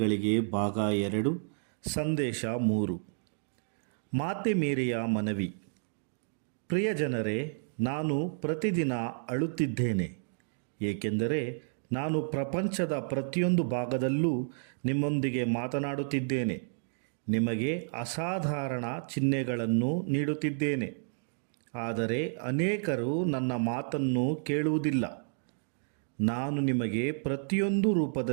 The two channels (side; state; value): left; silent; digital silence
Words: ಭಾಗ 2 ಸಂದೇಶ 3. ಮಾತೆ ಮೇರಿಯ ಮನವಿ. ಪ್ರಿಯ ಜನರೇ, ನಾನು ಪ್ರತಿದಿನ ಅಳುತ್ತಿದ್ದೇನೆ, ಏಕೆಂದರೆ ನಾನು ಪ್ರಪಂಚದ ಪ್ರತಿಯೊಂದು ಭಾಗದಲ್ಲೂ ನಿಮ್ಮೊಂದಿಗೆ ಮಾತನಾಡುತ್ತಿದ್ದೇನೆ, ನಿಮಗೆ ಅಸಾಧಾರಣ ಚಿಹ್ನೆಗಳನ್ನು ನೀಡುತ್ತಿದ್ದೇನೆ. ಆದರೆ ಅನೇಕರು ನನ್ನ ಮಾತನ್ನು ಕೇಳುವುದಿಲ್ಲ. ನಾನು ನಿಮಗೆ ಪ್ರತಿಯೊಂದು